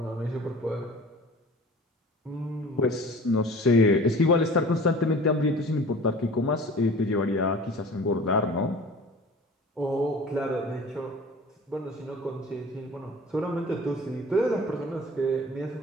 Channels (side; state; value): both; normal; correlation 0.43